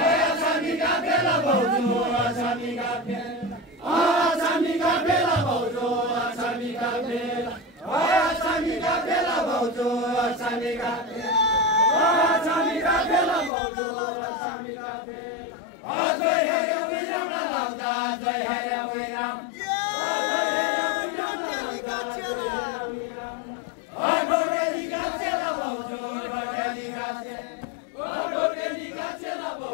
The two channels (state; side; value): drops out; right; at 13.5 s